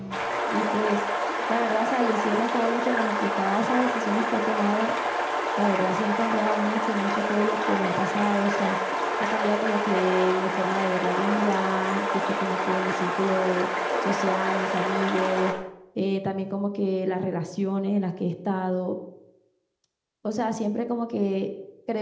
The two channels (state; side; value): identical; both; correlation 1.00